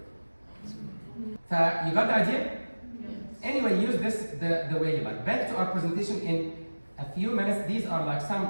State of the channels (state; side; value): inverted; both; correlation -1.00